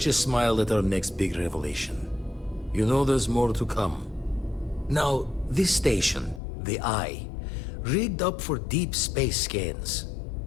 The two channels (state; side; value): drops out; right; at 6.4 s